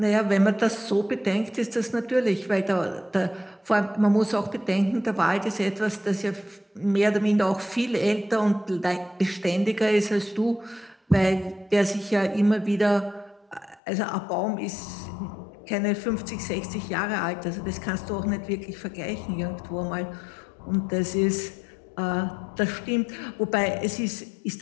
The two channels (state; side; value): drops out; right; at 13.8 s